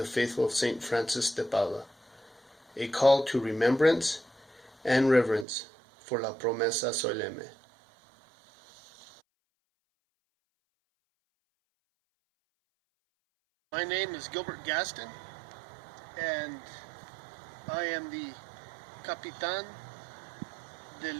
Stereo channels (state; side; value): drops out; left; at 5.5 s